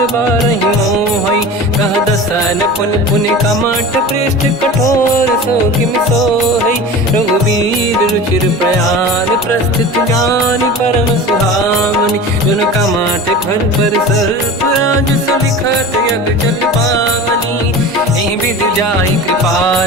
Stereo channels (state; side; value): normal; both; correlation 0.34